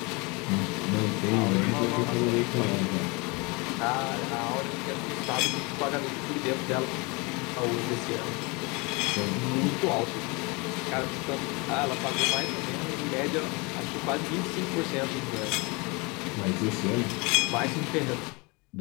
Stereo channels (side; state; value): right; quieter; 27.9 dB